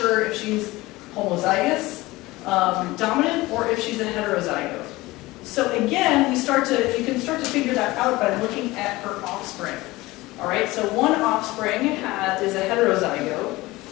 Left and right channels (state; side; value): quieter; right; 19.9 dB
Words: if she's homozygous, dominant, or if she's a heterozygote. So again, you can start to figure that out by looking at her offspring. All right, so one offspring is a heterozygote,